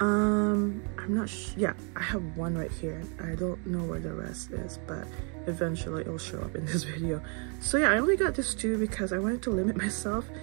not yeah, I have one right here. I don't know where the rest is, but eventually it'll show up in this video. So yeah, I only got this 2 because I wanted to limit myself,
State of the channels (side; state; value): left; quieter; 37.3 dB